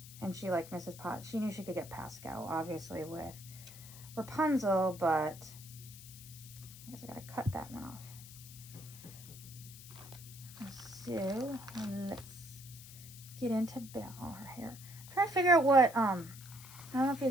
And she liked Mrs. Potts. She knew she could get Pascal, obviously, with Rapunzel, but I guess I gotta cut that one off. So let's get into Belle, her hair. I'm trying to figure out what, I don't know if you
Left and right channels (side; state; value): left; noise; hiss, 16 dB below the sound